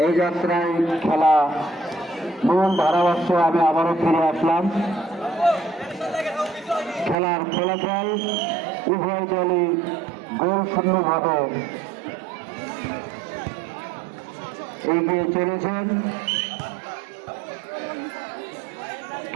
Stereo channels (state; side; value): drops out; left; at 7.2 s